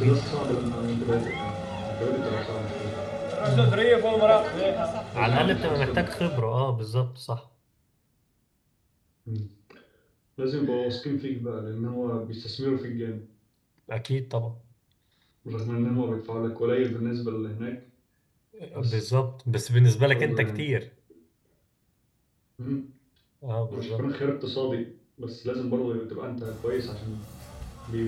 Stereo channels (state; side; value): identical; both; correlation 1.00